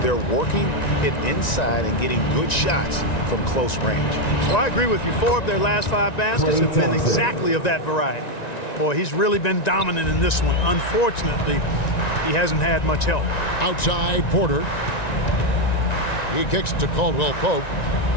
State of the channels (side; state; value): right; late; 1.9 ms